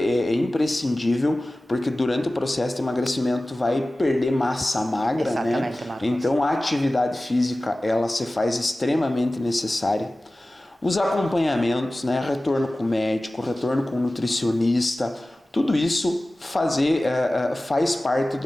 imprescindível, porque durante o processo de emagrecimento tu vai perder massa magra, exatamente, né? Marcos. Então a atividade física ela se faz extremamente necessária. Os acompanhamentos, né? Retorno com o médico, retorno com o nutricionista, tudo isso faz parte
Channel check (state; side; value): normal; both; correlation 0.97